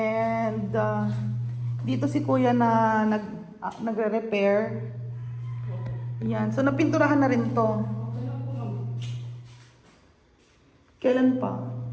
dito si Kuya na nagre-repair. Ayan. So, napinturahan na rin to. Kailan pa?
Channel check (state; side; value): identical; both; correlation 1.00